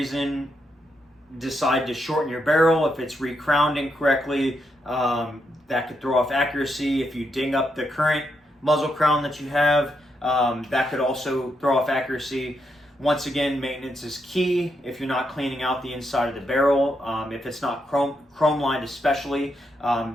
decide to shorten your barrel, if it's recrowned incorrectly, that could throw off accuracy. If you ding up the current muzzle crown that you have, that could also throw off accuracy. Once again, maintenance is key. If you're not cleaning out the inside of the barrel, if it's not chrome lined especially,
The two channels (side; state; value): both; normal; correlation 0.81